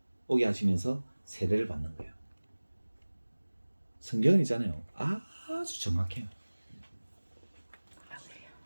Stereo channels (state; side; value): inverted; both; correlation -1.00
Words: 오게 하시면서 세례를 받는 거예요. 성경은 있잖아요. 아주 정확해요.